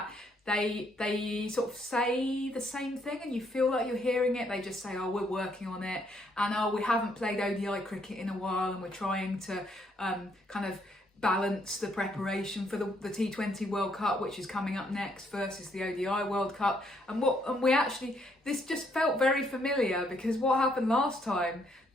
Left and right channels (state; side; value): normal; both; correlation 0.71